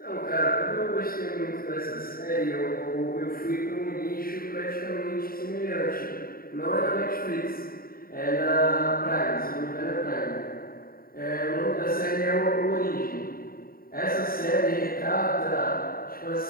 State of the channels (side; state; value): right; late; 0.43 ms